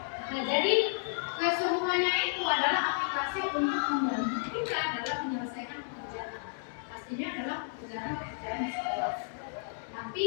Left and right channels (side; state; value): right; silent; digital silence